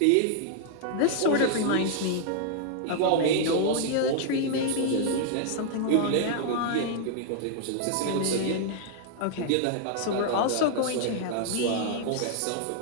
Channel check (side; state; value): both; different; correlation 0.00